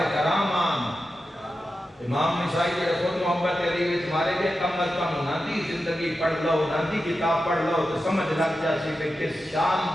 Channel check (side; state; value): both; normal; correlation 0.91